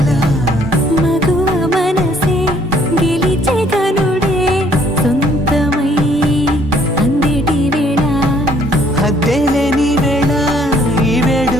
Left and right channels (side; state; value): both; normal; correlation 0.63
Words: మగువ మనసే గెలిచే కనుడే సొంతమై అందేటి వేళ హద్దేలేని వేళ ఈ